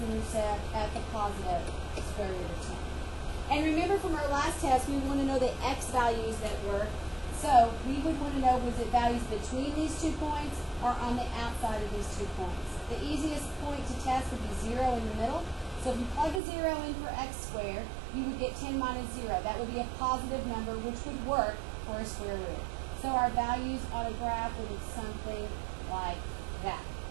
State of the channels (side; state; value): left; drops out; at 16.4 s